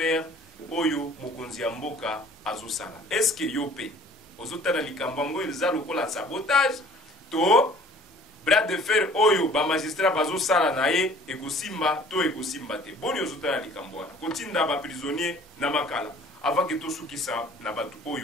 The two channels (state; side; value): normal; both; correlation 0.52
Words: oyo mokonzi ya mboka azosala. Est-ce que yope ozotala likambango eza lokola sabotage to bras de fer oyo ba magistrat bazosala na ye ekosimba to ekosimba te? Boni ozotala likambo wana kotinda ba prisonnier na makala avant que to sukisa na batu